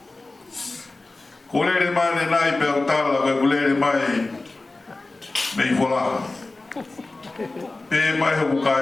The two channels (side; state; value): right; quieter; 3.2 dB